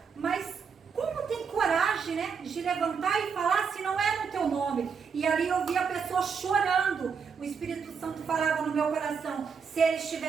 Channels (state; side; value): quieter; left; 6.0 dB